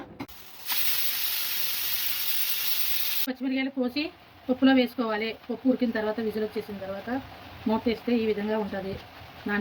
పచ్చిమిరకాయలు కోసి పప్పులో వేసుకోవాలి. పప్పు ఉడికిన తర్వాత విజిల్ వచ్చేసిన తర్వాత మూత వేస్తే ఈ విధంగా ఉంటుంది.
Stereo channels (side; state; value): both; identical; correlation 1.00